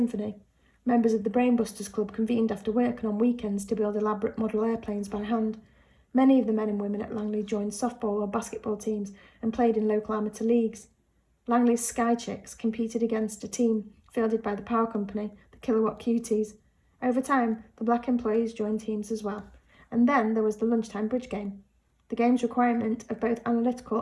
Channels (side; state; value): both; identical; correlation 1.00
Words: Members of the Brainbusters Club convened after work and on weekends to build elaborate model airplanes by hand. Many of the men and women at Langley joined softball or basketball teams and played in local amateur leagues. Langley's Sky Chicks competed against a team fielded by the power company, the Kilowatt Cuties. Over time, the black employees joined teams as well. And then there was the lunchtime bridge game. The game's requirement of both